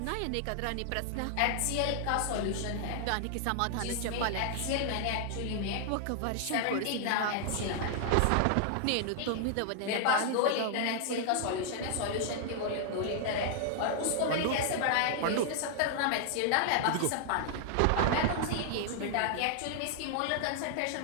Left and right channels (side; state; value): both; different; correlation 0.00